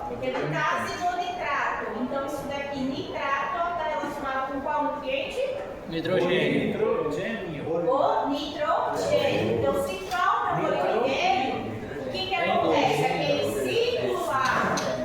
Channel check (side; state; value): both; identical; correlation 1.00